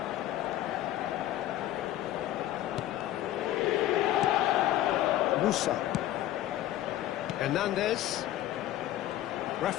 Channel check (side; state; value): right; quieter; 13.7 dB